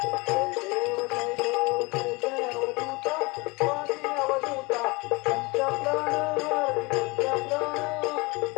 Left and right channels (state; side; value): quieter; right; 25.7 dB